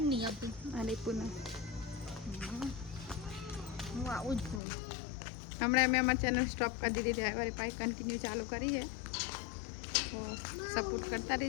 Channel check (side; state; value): right; drops out; at 4.6 s